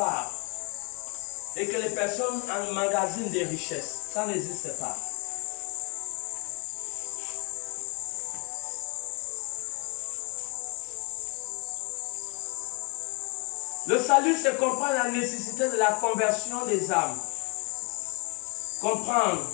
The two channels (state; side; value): quieter; right; 32.9 dB